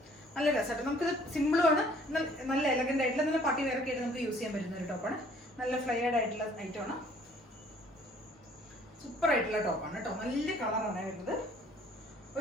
നല്ല രസമായിട്ട് നമുക്കിത് സിമ്പിളുമാണ്, നല്ല എലഗൻ്റ് ആയിട്ടുള്ള നല്ല പാർട്ടി വെയറൊക്കെ ആയിട്ട് നമുക്ക് യൂസ് ചെയ്യാൻ പറ്റുന്ന ഒരു ടോപ്പാണ്. നല്ല ഫ്ലയേർഡ് ആയിട്ടുള്ള ഐറ്റമാണ്. സൂപ്പർ ആയിട്ടുള്ള ടോപ്പാണ് കേട്ടോ. നല്ല കളറാണ് വരുന്നത്.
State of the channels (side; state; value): both; normal; correlation 0.57